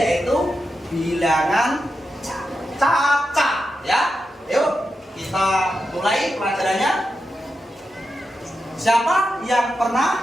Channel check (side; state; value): both; normal; correlation 0.88